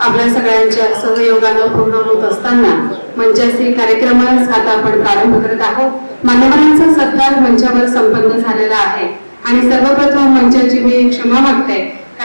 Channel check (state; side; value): inverted; both; correlation -1.00